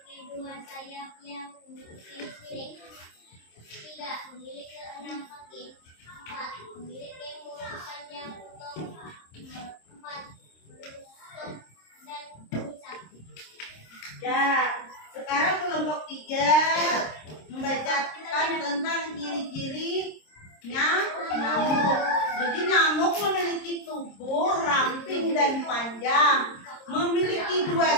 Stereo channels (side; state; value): right; late; 26 ms